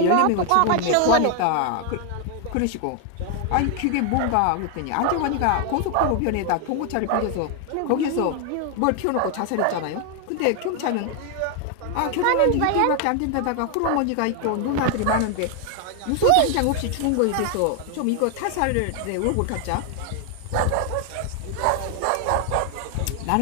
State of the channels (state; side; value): different; both; correlation 0.00